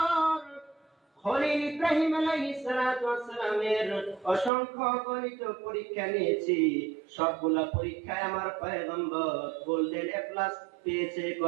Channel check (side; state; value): left; drops out; at 4.5 s